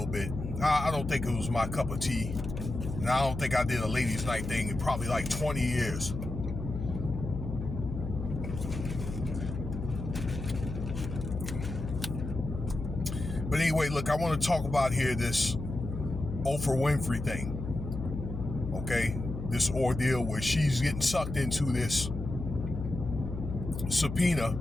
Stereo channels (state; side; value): noise; left; hum, 6 dB below the sound